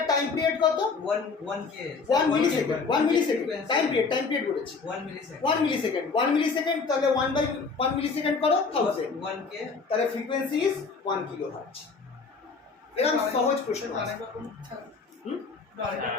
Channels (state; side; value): quieter; right; 4.7 dB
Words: টাইম পিরিয়ড কত 1 মিলিসেকেন্ড টাইম পিরিয়ড বলেছি 1 মিলিসেকেন্ড তাহলে 1 মিলিসেকেন্ড করো 1000 1 के তাহলে ফ্রিকোয়েন্সি ইজ 1 কিলোহার্টজ এরকম সহজ প্রশ্ন আছে